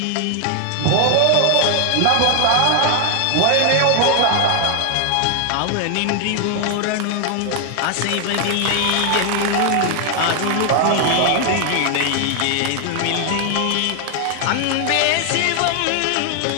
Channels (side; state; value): both; different; correlation 0.00